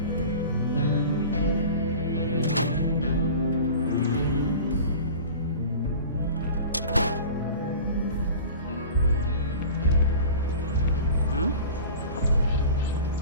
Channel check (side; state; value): both; inverted; correlation -0.38